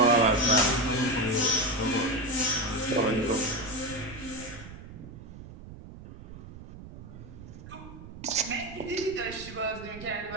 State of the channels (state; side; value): noise; right; rumble, 15 dB below the sound